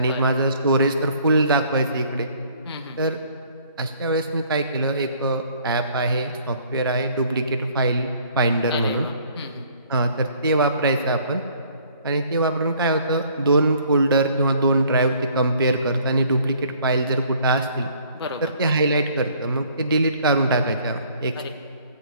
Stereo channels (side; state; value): both; inverted; correlation -0.59